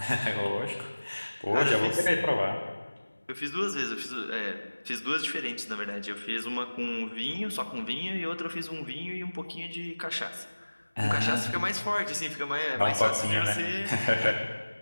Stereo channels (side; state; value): both; inverted; correlation -1.00